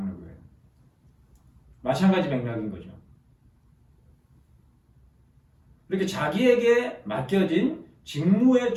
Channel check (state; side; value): identical; both; correlation 1.00